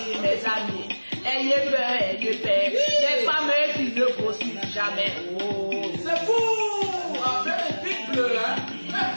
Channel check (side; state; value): both; inverted; correlation -1.00